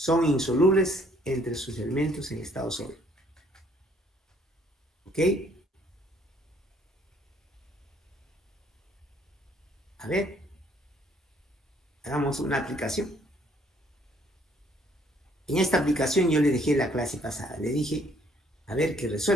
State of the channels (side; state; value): both; normal; correlation 0.63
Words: insolubles entre sus elementos en estado sólido. ¿Ok? A ver, hagamos una aplicación. En esta aplicación yo le dejé la clase pasada. Le dije, a ver, que